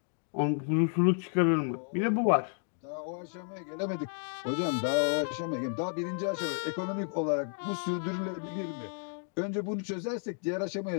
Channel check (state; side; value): silent; right; 57 dB below the other